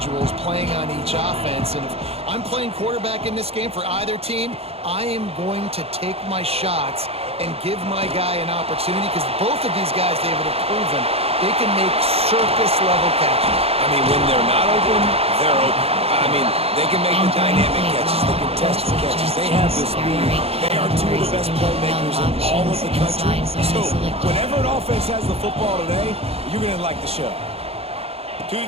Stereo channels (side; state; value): left; late; 0.29 ms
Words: playing on each offense, and if I'm playing quarterback in this game for either team, I am going to take my shots and give my guy an opportunity, because both of these guys, David, have proven they can make circus-level catches. I mean, when they're not open, they're open. I mean, they can make the dynamic catches, the contested catches. They have the speed. They are two of the best playmakers in all of the country. So, whenever an offense has the football today, you're going to like the show. To